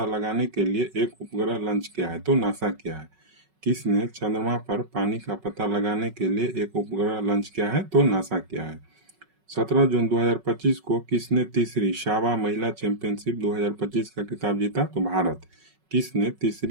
लगाने के लिए एक उपग्रह लॉन्च किया है? तो नासा किया है। किसने चंद्रमा पर पानी का पता लगाने के लिए एक उपग्रह लॉन्च किया है? तो नासा किया है। 17 जून 2025 को किसने तीसरी सावा महिला चैंपियनशिप 2025 का खिताब जीता? तो भारत। किसने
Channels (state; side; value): late; left; 5.4 ms